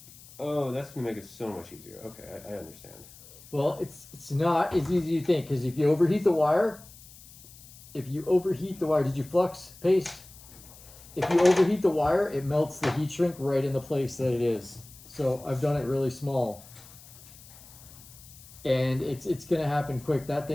Oh, that's gonna make it so much easier. Okay, I understand. Well, it's not as easy as you think because if you overheat the wire, did you flux paste? If you overheat the wire, it melts the heat shrink right in the place that it is. So I've done it really small. And it's gonna happen quick. That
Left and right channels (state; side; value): noise; left; hiss, 20 dB below the sound